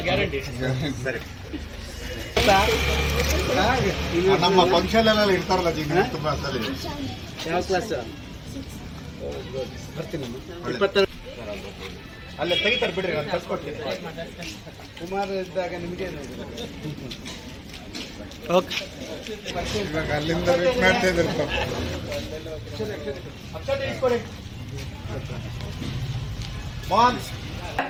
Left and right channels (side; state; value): both; identical; correlation 1.00